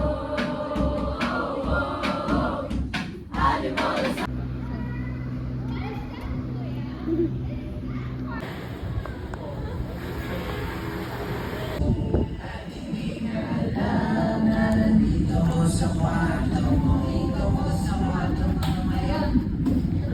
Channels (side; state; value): both; identical; correlation 1.00